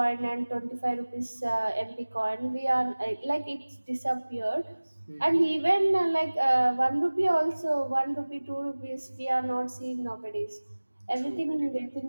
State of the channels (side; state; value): both; inverted; correlation -1.00